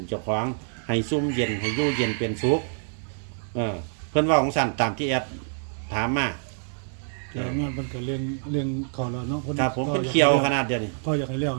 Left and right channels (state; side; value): silent; left; 61 dB below the other